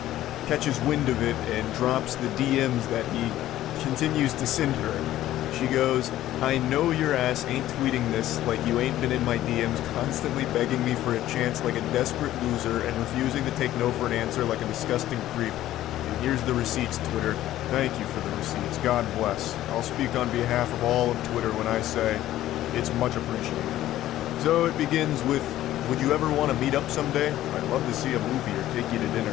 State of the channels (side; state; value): right; quieter; 13.8 dB